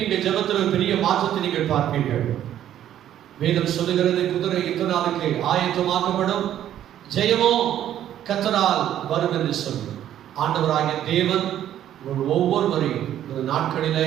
ஜெபத்தில் பெரிய மாற்றத்தை நீங்கள் பார்ப்பீர்கள். வேதம் சொல்லுகிறது, குதிரை யுத்தநாளுக்கு ஆயத்தமாக்கப்படும், ஜெயமோ கர்த்தரால் வரும் என்று சொல்லி. ஆண்டவராகிய தேவன் ஒவ்வொருவரையும் இந்த நாட்களிலே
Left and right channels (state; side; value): quieter; left; 11.3 dB